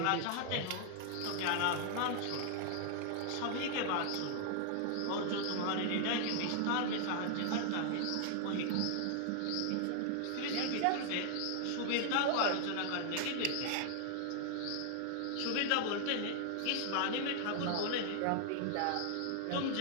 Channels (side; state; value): both; different; correlation 0.00